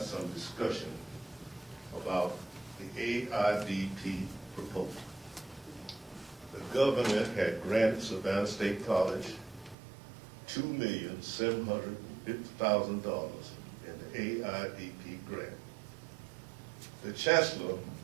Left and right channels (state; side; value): drops out; left; at 9.8 s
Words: some discussion about the AIDP proposal. The government had granted Savannah State College $2,750,000 in the AIDP grant. The chancellor